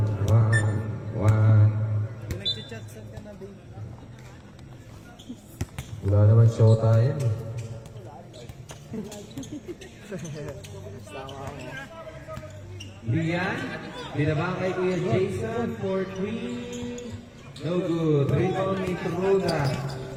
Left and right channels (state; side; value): identical; both; correlation 1.00